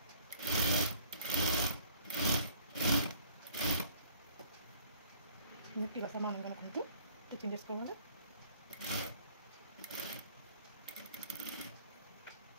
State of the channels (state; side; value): inverted; both; correlation -0.55